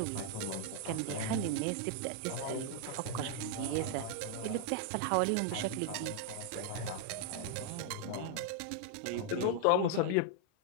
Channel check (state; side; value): different; both; correlation 0.00